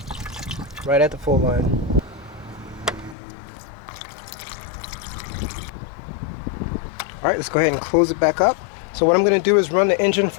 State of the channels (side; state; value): right; drops out; at 3.2 s